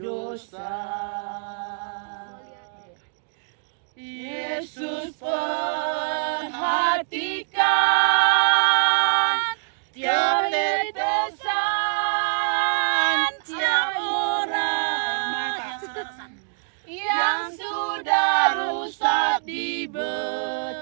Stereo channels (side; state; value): left; silent; digital silence